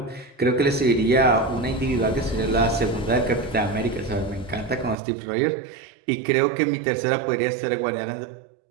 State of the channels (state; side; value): drops out; left; at 5.0 s